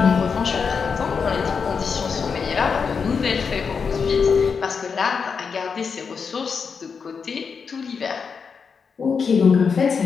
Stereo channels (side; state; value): right; quieter; 5.8 dB